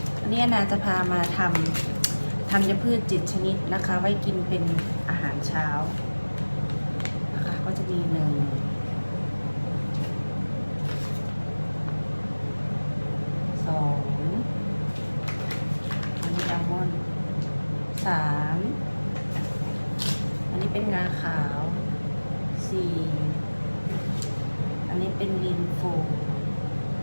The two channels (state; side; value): inverted; both; correlation -1.00